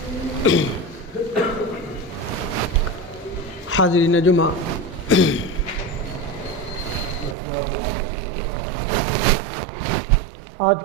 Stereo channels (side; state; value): left; drops out; at 7.4 s